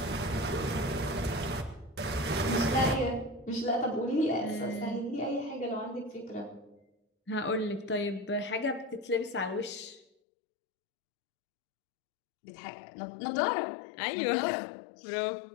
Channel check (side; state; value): right; drops out; at 10.1 s